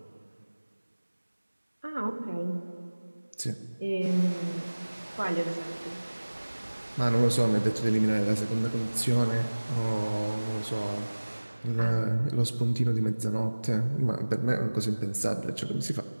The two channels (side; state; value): both; inverted; correlation -1.00